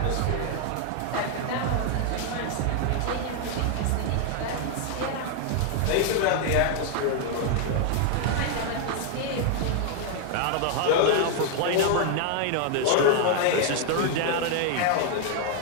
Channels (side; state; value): both; different; correlation 0.00